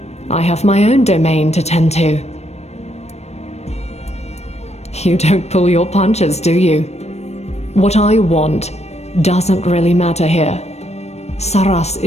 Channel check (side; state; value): right; late; 0.31 ms